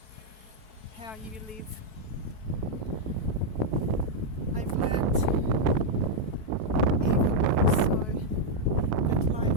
how you live. I've learned even more so that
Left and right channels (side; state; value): left; late; 4.6 ms